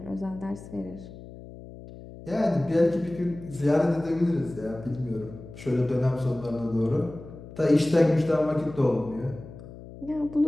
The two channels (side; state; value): left; noise; hum, 16 dB below the sound